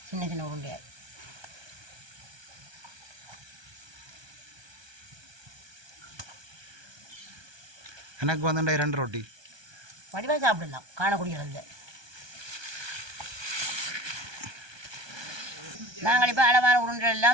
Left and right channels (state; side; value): late; left; 1.2 ms